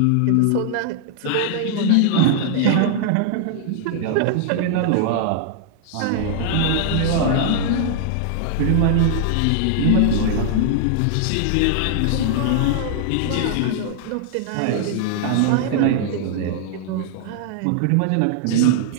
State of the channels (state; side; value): different; both; correlation -0.01